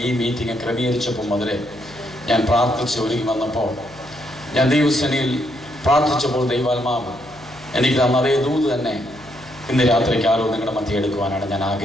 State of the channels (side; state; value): left; noise; hum, 24 dB below the sound